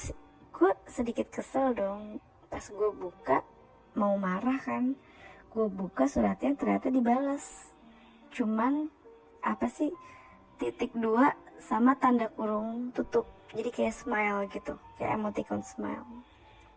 gue sedikit kesel dong, pas gue buka mau marah kan, gue buka suratnya ternyata dibalas, cuman .2 sama tanda kurung tutup, jadi kayak smile gitu, kayak emoticon smile.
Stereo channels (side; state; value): both; identical; correlation 1.00